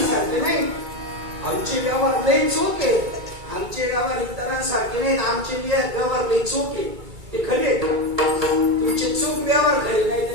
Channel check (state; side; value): late; left; 2.3 ms